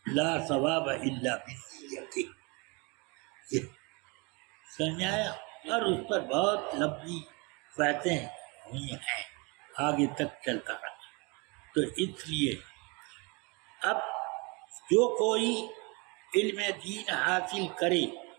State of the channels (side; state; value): left; quieter; 29.4 dB